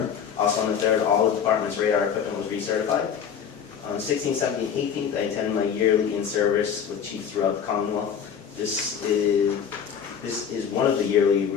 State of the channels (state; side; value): quieter; right; 7.7 dB